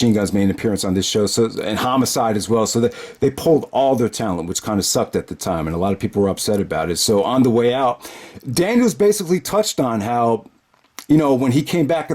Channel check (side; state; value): both; identical; correlation 1.00